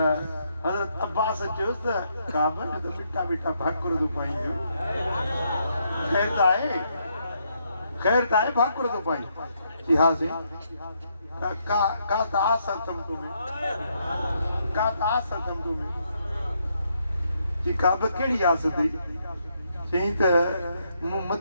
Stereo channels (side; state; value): both; inverted; correlation -0.75